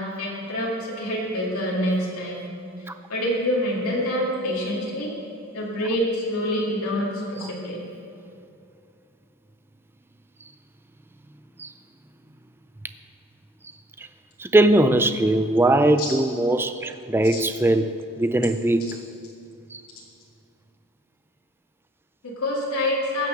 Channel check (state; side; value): normal; both; correlation 0.58